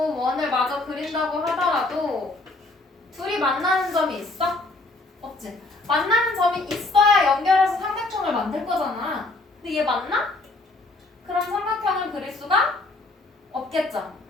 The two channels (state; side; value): quieter; right; 3.1 dB